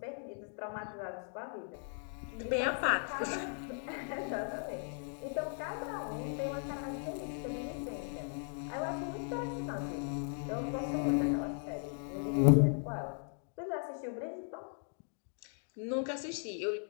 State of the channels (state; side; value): silent; right; 53 dB below the other